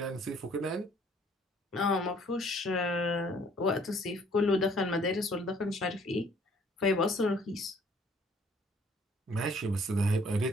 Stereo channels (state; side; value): normal; both; correlation 0.60